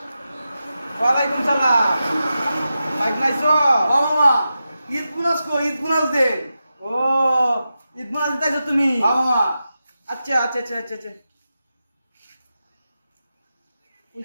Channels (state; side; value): inverted; both; correlation -0.91